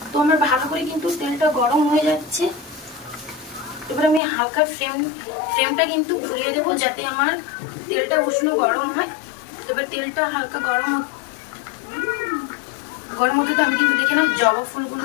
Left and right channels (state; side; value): drops out; right; at 4.2 s